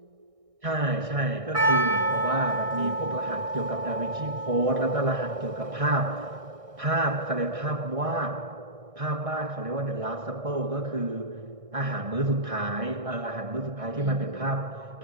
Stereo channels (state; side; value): late; left; 1.6 ms